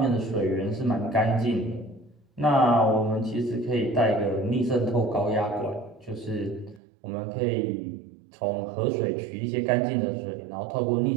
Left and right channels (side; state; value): left; drops out; at 6.8 s